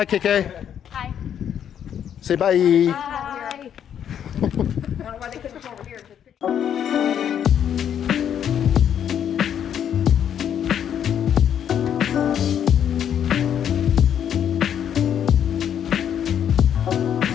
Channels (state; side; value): quieter; right; 9.2 dB